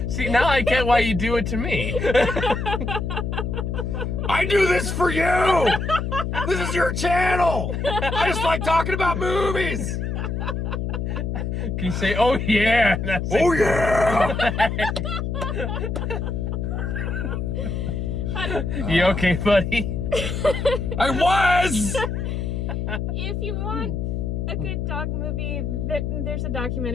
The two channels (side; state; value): left; noise; hum, 2 dB below the sound